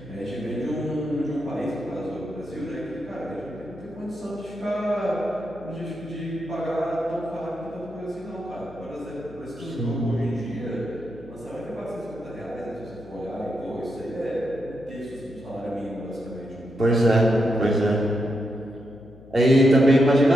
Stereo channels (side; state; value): left; noise; hum, 21 dB below the sound